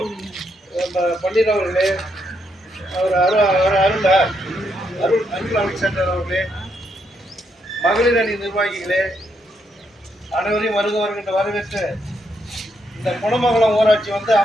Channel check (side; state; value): both; normal; correlation 0.78